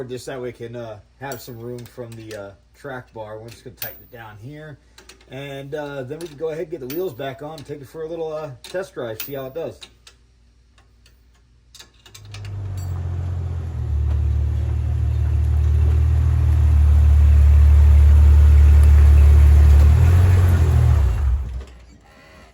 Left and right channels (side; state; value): both; identical; correlation 1.00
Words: just that we can have some room from the track bar. We're just going to tighten it down here. And then we can go ahead and get the wheels back on, take it for a little test drive, see how it does.